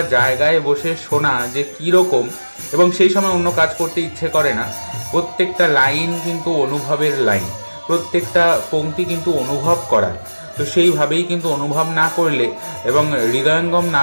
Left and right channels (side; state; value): both; inverted; correlation -1.00